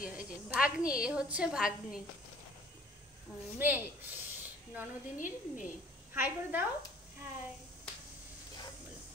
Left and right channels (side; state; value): both; normal; correlation 0.52